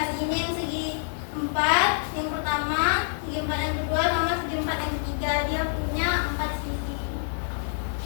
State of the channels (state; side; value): silent; right; 60 dB below the other